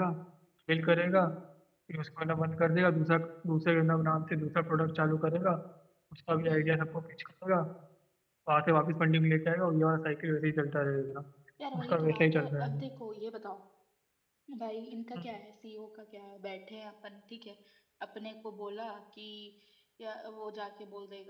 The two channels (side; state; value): both; identical; correlation 1.00